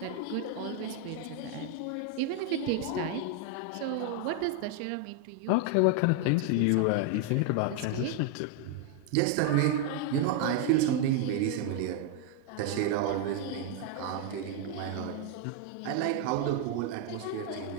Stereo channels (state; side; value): different; both; correlation 0.01